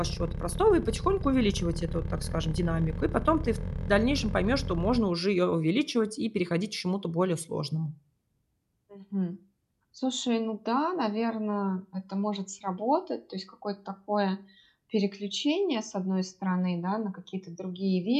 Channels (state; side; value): identical; both; correlation 1.00